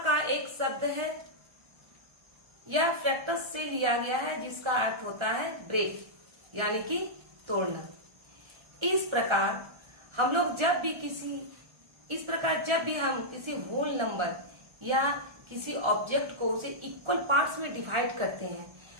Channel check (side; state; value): left; late; 1.3 ms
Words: का एक शब्द है। यह फ्रैक्टस से लिया गया है, जिसका अर्थ होता है ब्रेक, यानी कि तोड़ना। इस प्रकार जब भी हम किसी होल नंबर या किसी ऑब्जेक्ट को उसे इक्वल पार्ट्स में डिवाइड करते हैं,